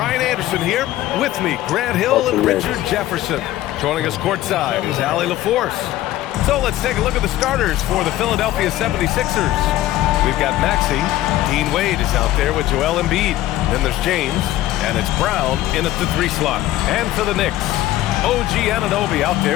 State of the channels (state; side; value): quieter; right; 14.7 dB